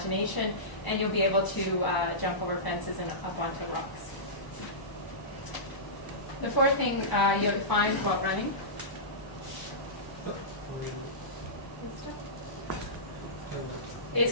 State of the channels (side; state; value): right; late; 1.0 ms